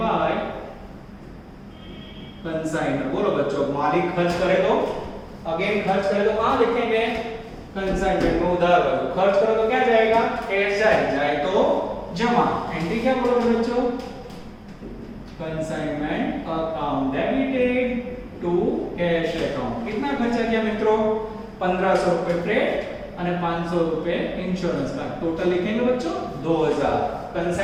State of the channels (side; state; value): both; identical; correlation 1.00